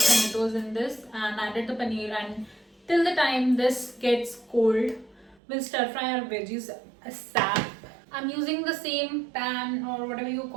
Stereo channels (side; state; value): left; drops out; at 5.4 s